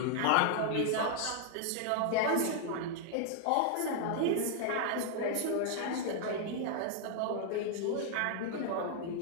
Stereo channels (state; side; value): different; both; correlation 0.00